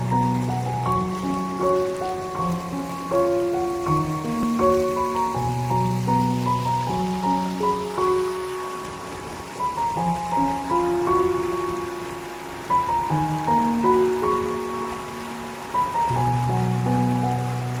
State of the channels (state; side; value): identical; both; correlation 1.00